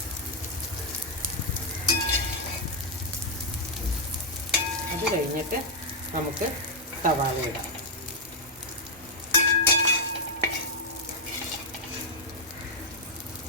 അത് കഴിഞ്ഞിട്ട് നമുക്ക് സവാള ഇടാം.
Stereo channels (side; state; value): both; normal; correlation -0.03